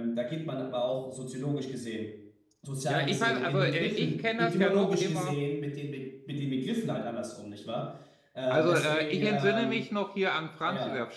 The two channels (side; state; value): both; identical; correlation 1.00